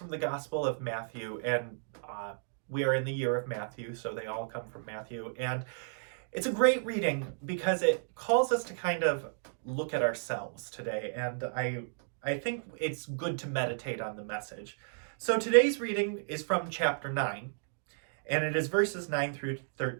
the Gospel of Matthew, and we are in the year of Matthew, so they all come from Matthew. And it's a great reading because it calls us to kind of look at ourselves today, and I think it's good to meditate on the message. So today's reading is from chapter 9, and it is verses 9 through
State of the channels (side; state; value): left; silent; digital silence